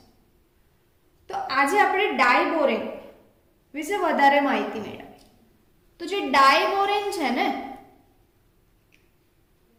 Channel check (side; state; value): both; identical; correlation 1.00